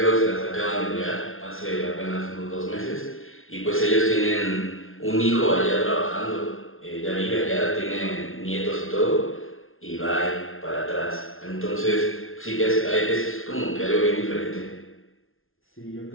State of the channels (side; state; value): right; late; 0.60 ms